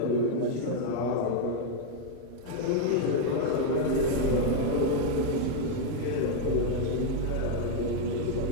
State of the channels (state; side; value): different; both; correlation 0.00